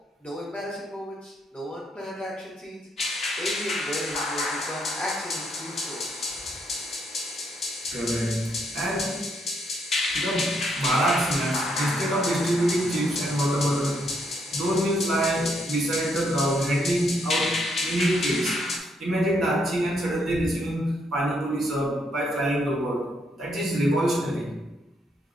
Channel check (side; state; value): both; normal; correlation 0.74